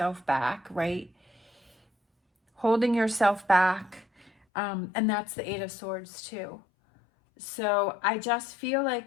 back, right? Holding yourself back. And that's the Eight of Swords too. So I just feel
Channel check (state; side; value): drops out; right; at 4.3 s